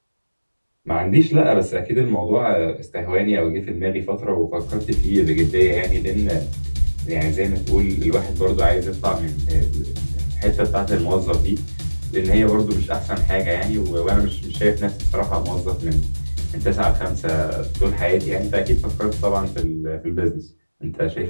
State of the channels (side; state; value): both; inverted; correlation -1.00